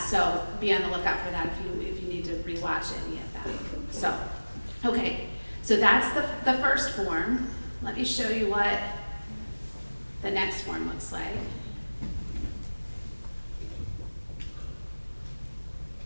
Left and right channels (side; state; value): both; inverted; correlation -1.00